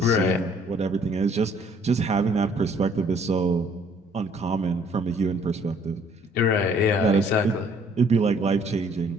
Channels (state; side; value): normal; both; correlation 0.60